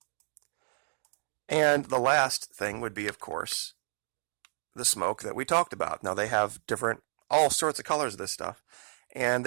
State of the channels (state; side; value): silent; left; digital silence